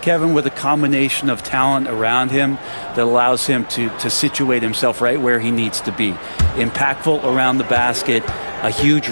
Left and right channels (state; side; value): inverted; both; correlation -1.00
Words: with a combination of talent around him that allows him to situate himself right where he needs to be. Impactful around the basket, a huge